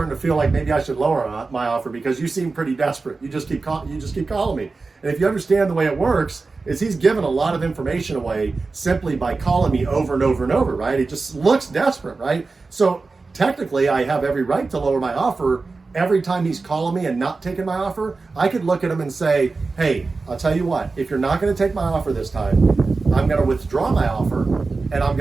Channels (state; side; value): quieter; left; 3.9 dB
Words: to feel like maybe I should lower my offer because you seem pretty desperate. You just keep calling me. And if you understand the way it works, is he's given a lot of information away simply by calling me over and over and over, right? It just looks desperate, right? So technically I have every right to lower my offer. Every time he's calling me and not taking my offer, I could look at him and say, hey, I'll tell you what, if you're not going to take my offer this time, I'm going to withdraw my offer and I'm